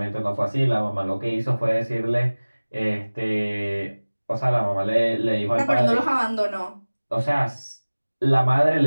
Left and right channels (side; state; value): both; inverted; correlation -1.00